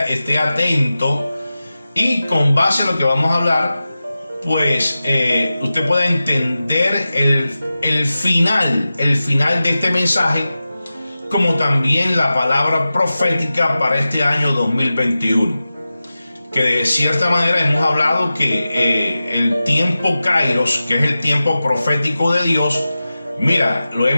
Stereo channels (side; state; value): both; inverted; correlation -0.94